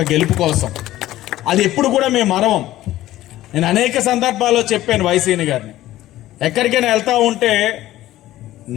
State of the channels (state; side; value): quieter; right; 15.1 dB